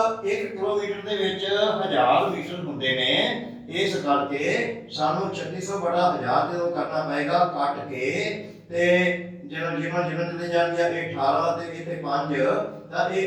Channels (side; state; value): both; identical; correlation 1.00